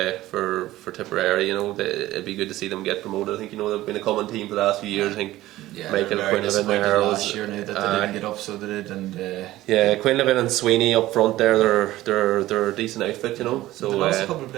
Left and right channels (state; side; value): quieter; left; 16.0 dB